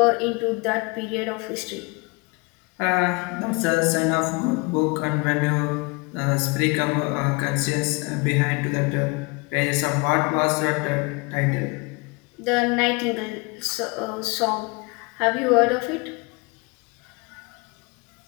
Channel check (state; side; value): quieter; right; 28.3 dB